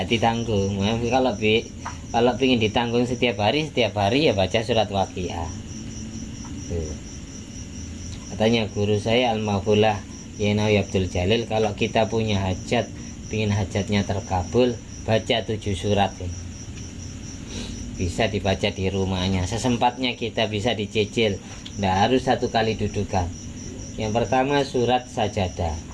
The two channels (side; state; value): both; identical; correlation 1.00